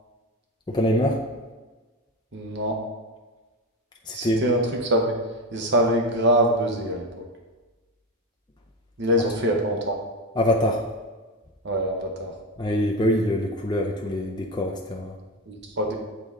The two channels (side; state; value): both; normal; correlation 0.18